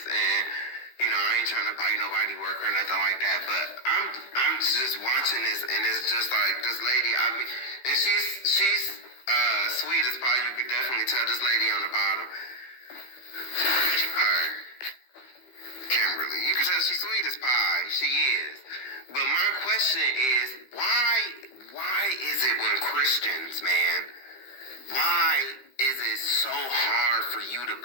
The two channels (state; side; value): late; right; 15 ms